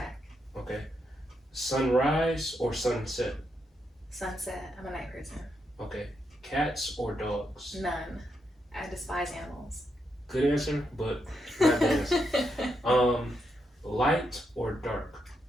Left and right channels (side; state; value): both; normal; correlation 0.81